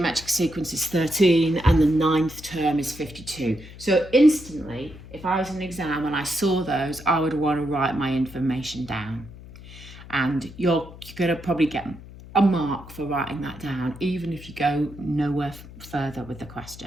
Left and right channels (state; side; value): noise; left; hum, 17 dB below the sound